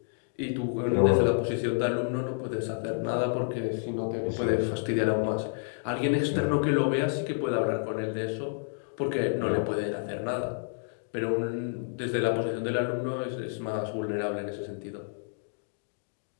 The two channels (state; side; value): silent; right; digital silence